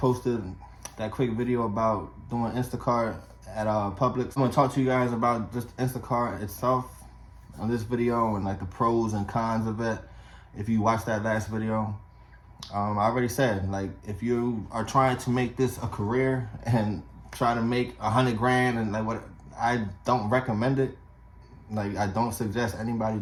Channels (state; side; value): identical; both; correlation 1.00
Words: that quick video about doing Instacart at Publix. I'm gonna talk to you guys about just Instacart itself on this video and like the pros and cons of it. If you watched that last video, I already said, like, if you are trying to make this a career and try to make 100 grand and like what, I don't recommend it. Like, I don't suggest anybody